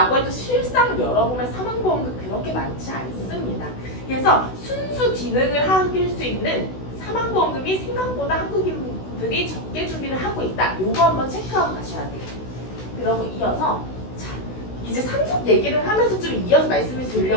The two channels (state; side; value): late; right; 16 ms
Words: 해도 실상 열어보면 사망보험금 그렇게 많지 않습니다. 그래서 순수 기능을 하길 수 있는 사망보험금이 생각보다 한국인들이 적게 준비를 하고 있다. 요거 한번 체크하고 가셔야 돼요. 그러고 이어서 자, 이제 상속 얘기를 하면서 좀 이어서 말씀을